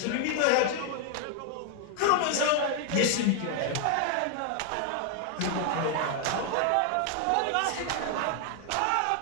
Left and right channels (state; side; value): different; both; correlation 0.00